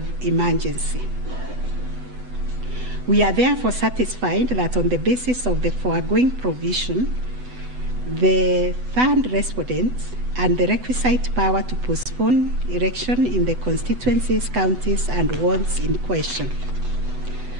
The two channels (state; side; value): late; left; 8.0 ms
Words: emergency. We are therefore satisfied that on the basis of the foregoing provision, the third respondent and the requisite power to postpone election in the constituencies, counties, and wards in question.